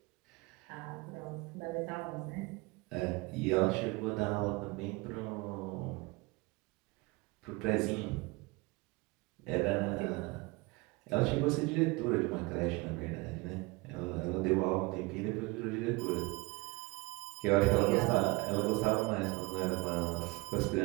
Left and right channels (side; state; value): left; quieter; 24.3 dB